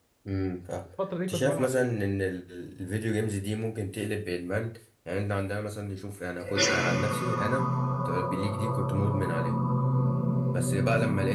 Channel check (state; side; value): identical; both; correlation 1.00